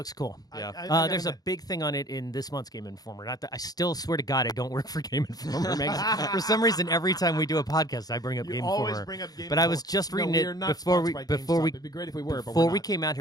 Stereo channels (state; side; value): late; right; 0.19 ms